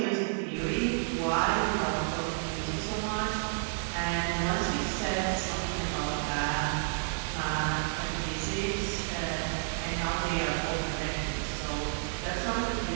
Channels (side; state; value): left; silent; digital silence